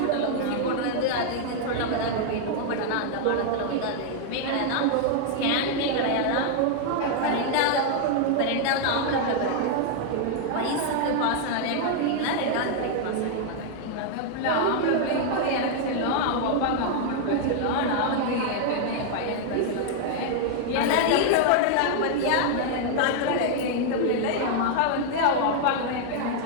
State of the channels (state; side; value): different; both; correlation -0.01